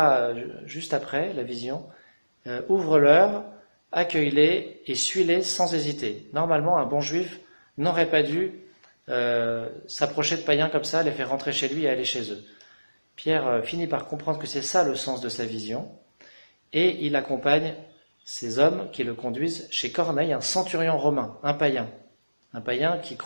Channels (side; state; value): both; inverted; correlation -1.00